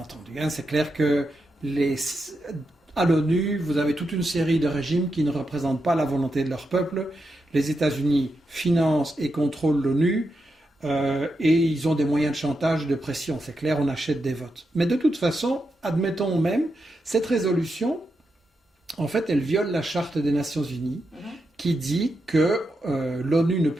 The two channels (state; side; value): normal; both; correlation 0.86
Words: C'est clair que à l'ONU, vous avez toute une série de régimes qui ne représentent pas la volonté de leur peuple. Les États-Unis financent et contrôlent l'ONU et ils ont des moyens de chantage, de pression. C'est clair, on achète des votes. Mais de toute façon, admettons même, cette résolution, en fait, elle viole la Charte des Nations Unies qui dit que l'ONU ne